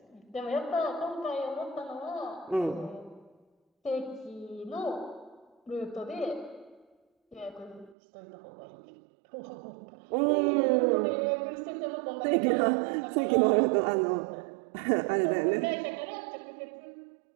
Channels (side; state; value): left; drops out; at 8.0 s